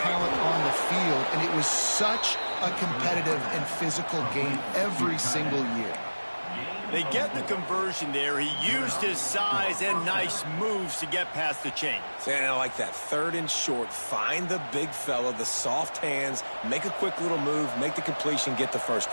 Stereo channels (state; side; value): inverted; both; correlation -1.00